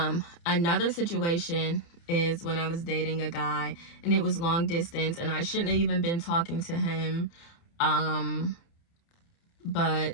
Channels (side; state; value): right; late; 29 ms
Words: Another situation is when I was dating a guy and it was long distance, and I shouldn't have even been talking to him,